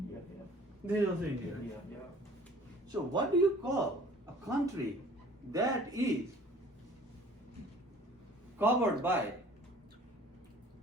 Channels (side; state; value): both; normal; correlation 0.50